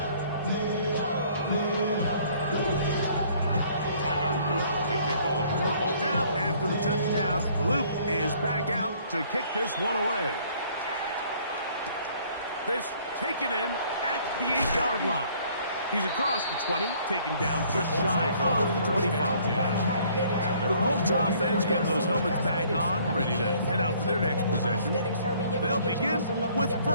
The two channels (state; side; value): inverted; both; correlation -0.59